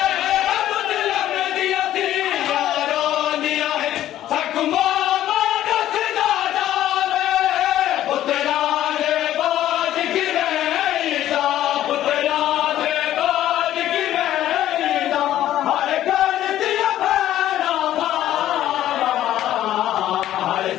मुसलम दिया यारो दिया हकुमा बादत ना जावे पुतरा दे बाज की रहता पुतरा दे बाज की रहता हर कर दिया भैरा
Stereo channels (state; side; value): quieter; right; 12.7 dB